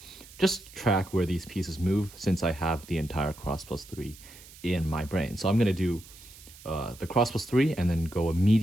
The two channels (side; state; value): right; noise; hiss, 20 dB below the sound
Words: just track where these pieces move since I have the entire cross plus 3 in my brain. So I'm going to do the cross plus 3 and then go